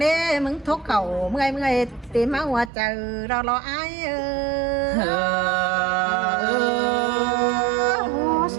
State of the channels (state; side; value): drops out; left; at 2.7 s